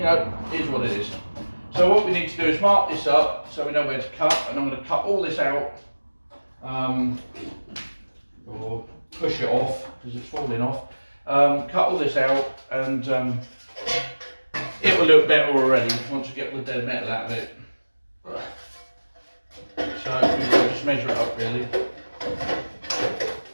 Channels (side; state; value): both; inverted; correlation -1.00